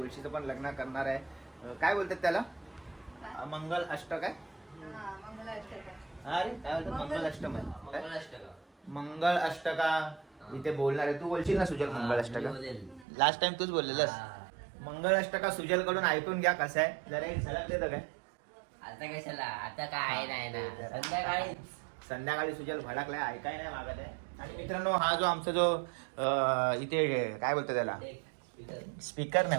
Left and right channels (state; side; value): drops out; left; at 13.1 s